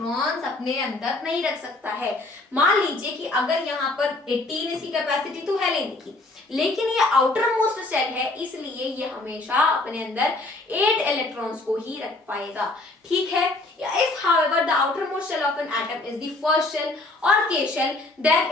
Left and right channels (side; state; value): right; quieter; 3.0 dB